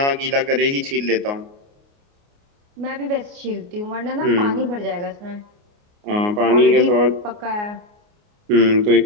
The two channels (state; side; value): late; left; 29 ms